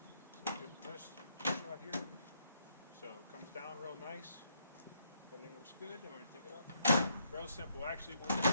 So give a test shot here. So it comes down real nice. Everything looks good. And we're going to take it up. Real simple. Actually,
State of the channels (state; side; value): inverted; both; correlation -0.74